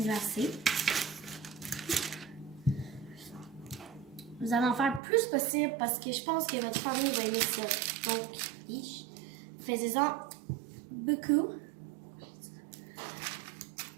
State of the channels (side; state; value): left; drops out; at 5.0 s